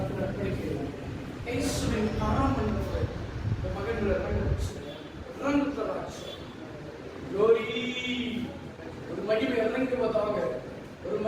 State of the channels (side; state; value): both; identical; correlation 1.00